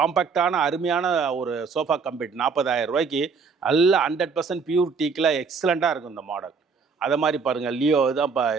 அருமையான ஒரு சோஃபா கம்பெட் 40,000 ரூபாய்க்கு நல்ல 100% பியூர் டீக்கில் எக்ஸலண்ட்டாக இருக்கும் இந்த மாடல். அதை மாதிரி பாருங்கள் லியோ தான்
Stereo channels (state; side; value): quieter; left; 5.2 dB